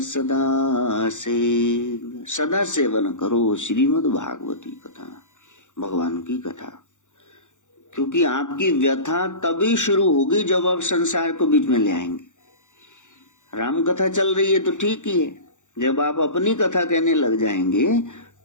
सदा सेव्य, सदा सेवन करो श्रीमद् भागवती कथा, भगवान की कथा। क्योंकि आपकी व्यथा तभी शुरू होगी जब आप संसार को बीच में ले आएंगे। राम कथा चल रही है तो ठीक ही है, जब आप अपनी कथा कहने लग जाएंगे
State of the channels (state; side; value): late; right; 0.86 ms